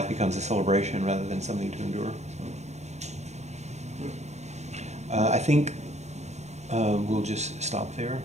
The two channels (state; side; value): late; left; 0.32 ms